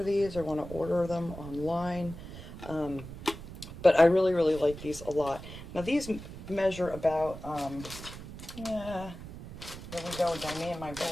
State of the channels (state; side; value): noise; right; rumble, 12 dB below the sound